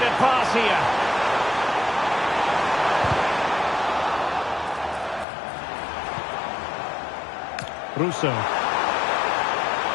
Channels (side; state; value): right; drops out; at 5.2 s